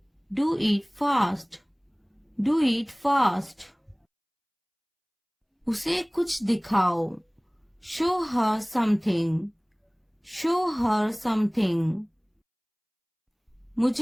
do it fast, do it fast. उसे कुछ दिखाओ, show her something, show her something.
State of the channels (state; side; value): identical; both; correlation 1.00